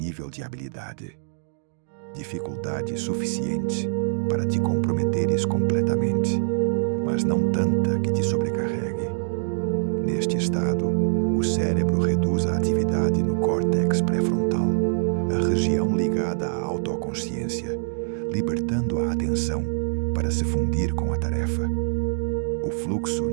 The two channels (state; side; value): silent; left; digital silence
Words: de habilidade. Dificuldade suficiente para te comprometeres completamente, mas não tanta que te sobrecarregue. Neste estado, o cérebro reduz a atividade no córtex pré-frontal, a região ligada à autoconsciência, libertando a atenção para se fundir com a tarefa. O fluxo